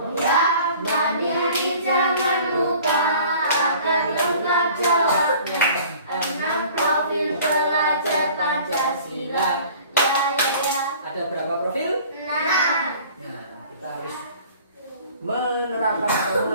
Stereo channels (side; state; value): both; inverted; correlation -0.48